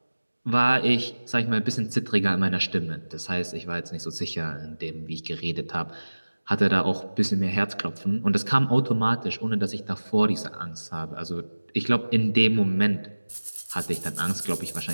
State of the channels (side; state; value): both; inverted; correlation -1.00